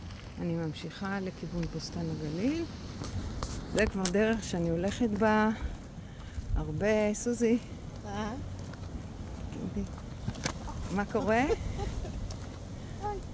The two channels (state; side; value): identical; both; correlation 1.00